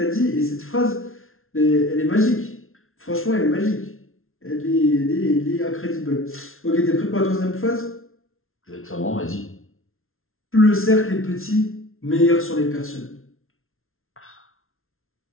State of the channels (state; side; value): late; right; 0.61 ms